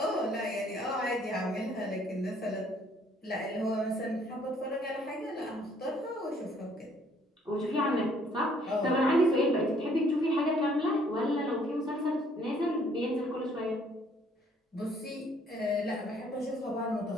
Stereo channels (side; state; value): both; normal; correlation 0.63